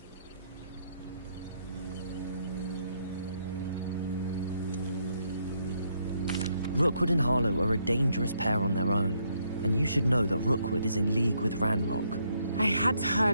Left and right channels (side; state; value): both; inverted; correlation -0.73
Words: Rookwood and Harlow are a dangerous pair on their own, and you should know that Rookwood is in league with Ranrock. I had